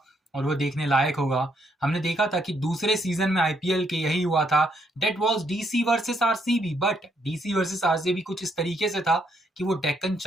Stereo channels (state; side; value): normal; both; correlation 0.74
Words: और वो देखने लायक होगा। हमने देखा था कि दूसरे सीजन में IPL के यही हुआ था। Date was DC versus RCB, but DC versus RCB कुछ इस तरीके से था कि वो डेक्कन